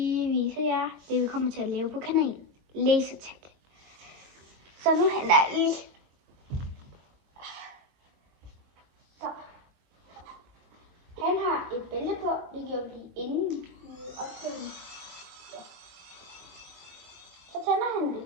vise jer det, vi kommer til at lave på kanalen. Lasertag. Så nu henter jeg lige. Så. Han har et bælte på, det gjorde vi lige inden. Ja. Så tænder han det.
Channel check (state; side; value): late; left; 22 ms